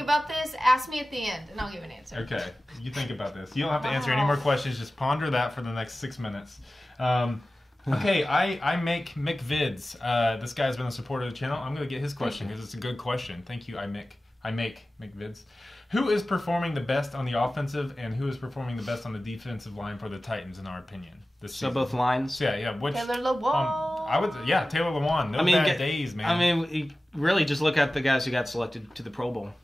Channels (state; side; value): normal; both; correlation 0.96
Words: about this. Ask me at the end, and I'll give an answer. Okay. You think about this. You don't have to answer any more questions. Just ponder that for the next 6 minutes. Okay, I make Mick Vids. This guy's been a supporter of the channel. I'm going to get his question because it's a good question. Thank you, I make Mick Vids. Who is performing the best on the offensive and who is performing the best on the defensive line for the Titans, in our opinion? So both lines? Yeah. Which, Taylor Lewan. Taylor Lewan. No bad days, man. I mean, really just look at the guys who got selected to the Pro Bowl.